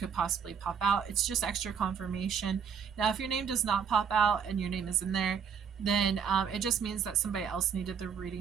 possibly pop out. It's just extra confirmation. Now, if your name does not pop out and your name is in there, then it just means that somebody else needed the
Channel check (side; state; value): left; quieter; 7.1 dB